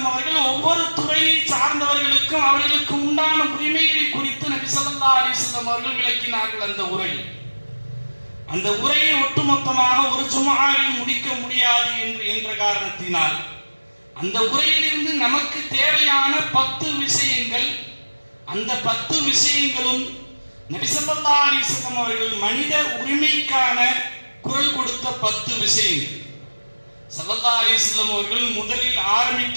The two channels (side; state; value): both; inverted; correlation -1.00